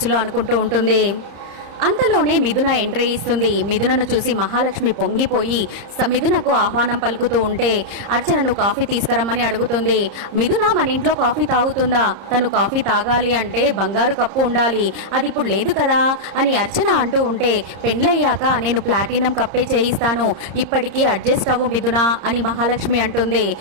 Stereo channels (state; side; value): late; left; 30 ms